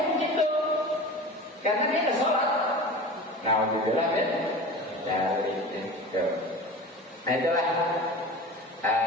begitu, karena dia ada sholat. Nah, alhamdulillah kan dari itu. Nah itulah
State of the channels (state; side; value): normal; both; correlation 0.34